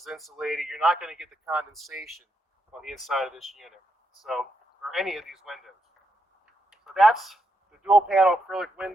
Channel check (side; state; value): both; normal; correlation 0.81